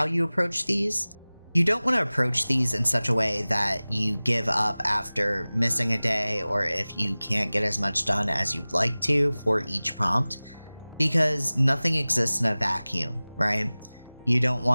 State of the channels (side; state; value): both; inverted; correlation -0.99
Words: you approach these. You don't want to approach these in such a way that you give up after missing a day or if you can't get as much done as you'd like to for each prompt, because nothing exists in a vacuum, right? You don't